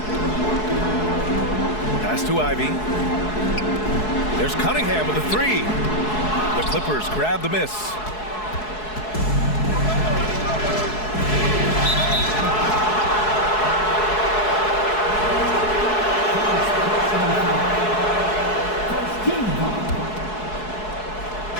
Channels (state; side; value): late; right; 4.7 ms